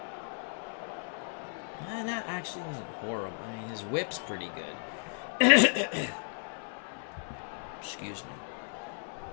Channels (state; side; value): silent; right; 55 dB below the other